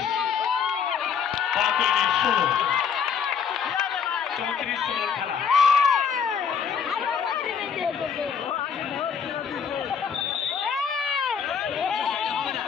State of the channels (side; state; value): right; quieter; 6.9 dB